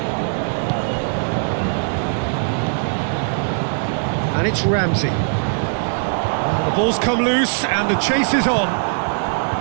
And it's Ramsey. Well, the ball's come loose and the chase is on.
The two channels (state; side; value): silent; left; digital silence